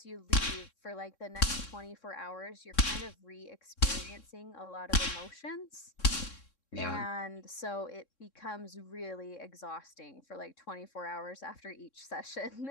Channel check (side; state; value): right; late; 3.6 ms